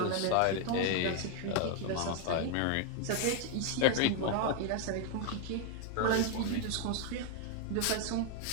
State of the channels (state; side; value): different; both; correlation 0.00